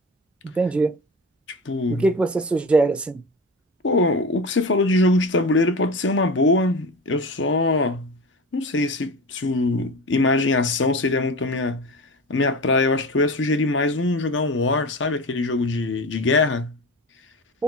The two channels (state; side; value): normal; both; correlation 0.29